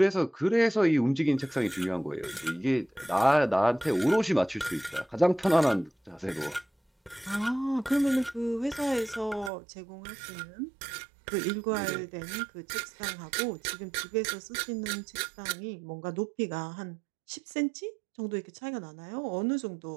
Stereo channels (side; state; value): left; drops out; at 9.5 s